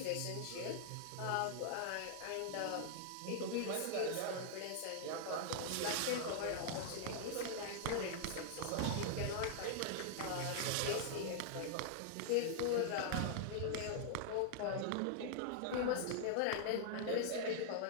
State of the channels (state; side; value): different; both; correlation -0.01